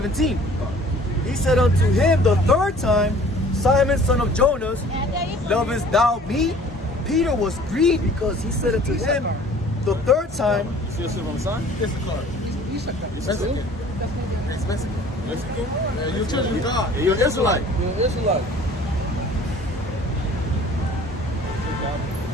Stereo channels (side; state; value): both; normal; correlation 0.50